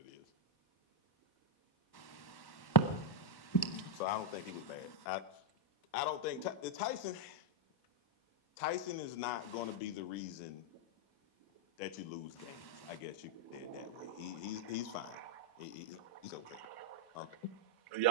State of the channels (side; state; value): right; late; 1.1 ms